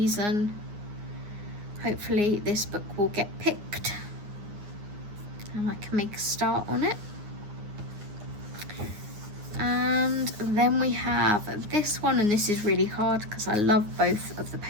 Hopefully this book will get picked. and I can make a start on it. And then we have this one, and this is really hard because I love both of the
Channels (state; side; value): late; left; 9.7 ms